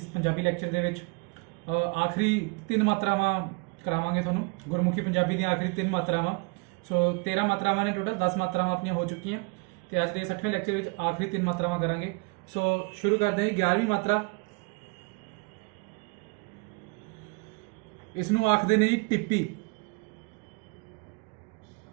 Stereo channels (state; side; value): quieter; left; 30.5 dB